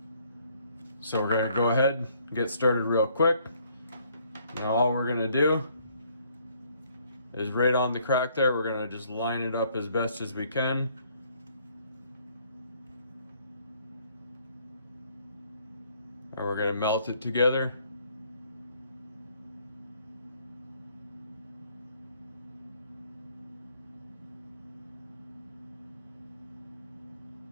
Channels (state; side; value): inverted; both; correlation -0.65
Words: So we're going to go ahead and get started real quick. Now all we're going to do is right on the crack there, we're going to just line it up as best as we can. And we're going to melt it together.